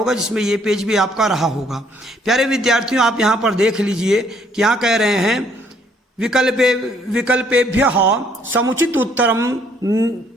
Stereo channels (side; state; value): both; normal; correlation 0.65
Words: जिसमें ये पेज भी आपका रहा होगा। प्यारे विद्यार्थियों, आप यहाँ पर देख लीजिए कि यहाँ कह रहे हैं विकल्पेभ्यः समुचित उत्तरम